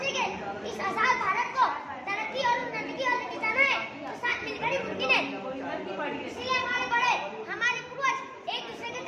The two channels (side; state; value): both; identical; correlation 1.00